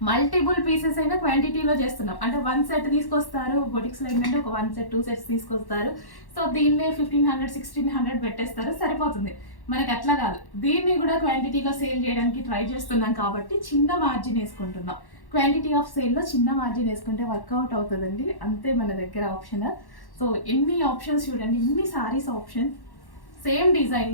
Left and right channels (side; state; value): right; late; 1.1 ms